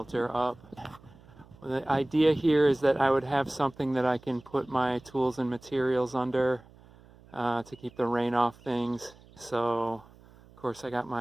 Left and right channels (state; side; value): noise; right; hum, 25 dB below the sound